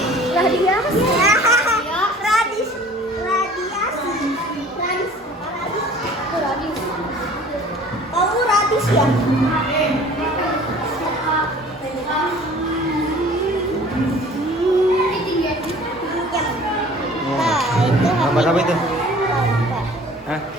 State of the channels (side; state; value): both; normal; correlation 0.48